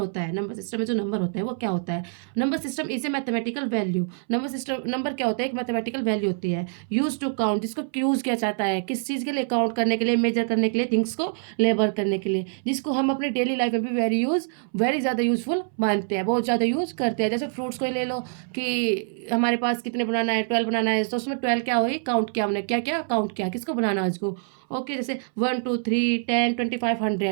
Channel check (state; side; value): silent; left; 60 dB below the other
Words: है, नंबर सिस्टम में जो नंबर होता है वो क्या होता है। Number system is a mathematical value. Number system, number क्या होता है, एक मैथमेटिकल वैल्यू होती है यूज टू काउंट, जिसको यूज किया जाता है किस चीज़ के लिए, काउंट करने के लिए, मेजर करने के लिए, थिंग्स को लेबर करने के लिए, जिसको हम अपने डेली लाइफ में भी वेरी ज़्यादा यूज़फुल मानते हैं, बहुत ज़्यादा यूज़ करते हैं। जैसे फ्रूट्स को ही ले लो कि हमारे पास कितने बनाना है, 12 बनाना है, तो उसमें 12 क्या हुई, काउंट किया हमने, क्या क्या काउंट किया, किसको बनाना है उसको। ओके, जैसे 1 2 3 10 25